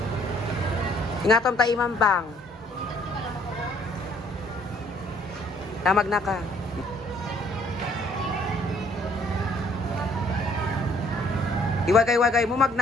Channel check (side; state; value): both; normal; correlation 0.62